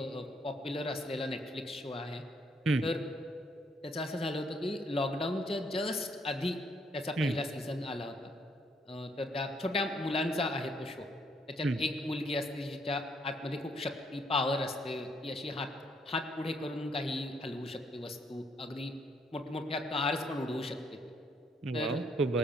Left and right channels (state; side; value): normal; both; correlation 0.70